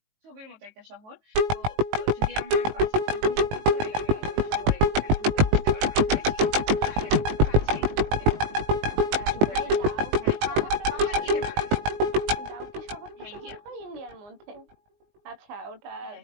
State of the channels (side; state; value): left; late; 19 ms